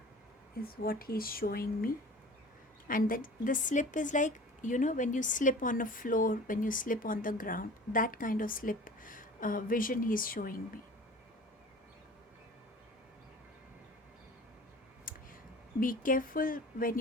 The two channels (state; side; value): normal; both; correlation 0.42